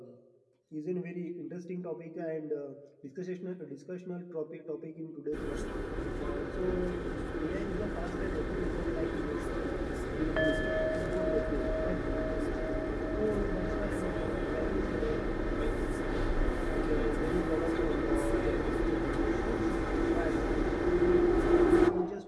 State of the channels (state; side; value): identical; both; correlation 1.00